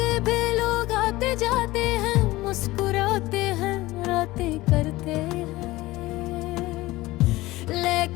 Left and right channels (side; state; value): right; quieter; 18.9 dB